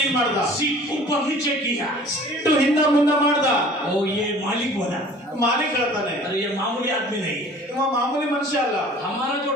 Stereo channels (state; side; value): normal; both; correlation 0.48